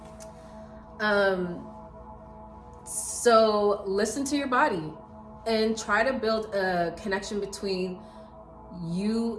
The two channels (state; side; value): identical; both; correlation 1.00